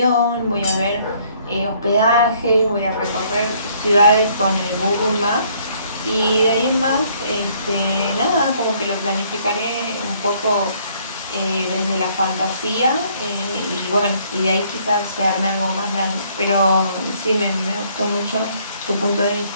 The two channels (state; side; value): inverted; both; correlation -0.63